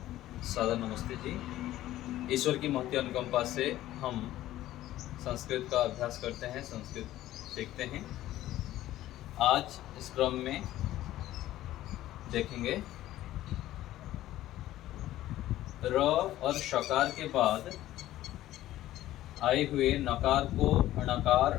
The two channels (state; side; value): quieter; right; 14.5 dB